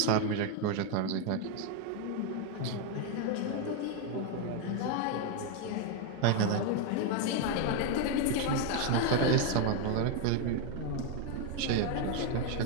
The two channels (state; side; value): different; both; correlation 0.01